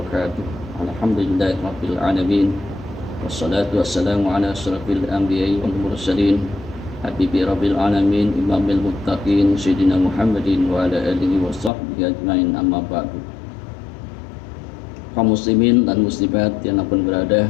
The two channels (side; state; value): right; drops out; at 11.7 s